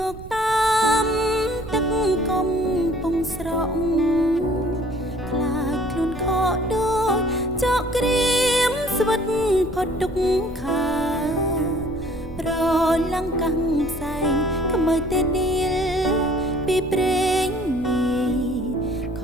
ុកតាមទឹកកំពង់ស្រក់ខ្លាចខ្លួនខកដូចចកក្រៀមស្វិតផុតទុកខាប្រឡាំងកាំងផ្សែងក្មើតែឌីលពីព្រេងនាយខ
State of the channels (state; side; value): noise; right; rumble, 15 dB below the sound